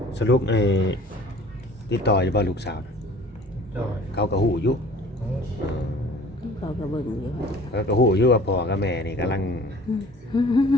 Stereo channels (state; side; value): normal; both; correlation 0.48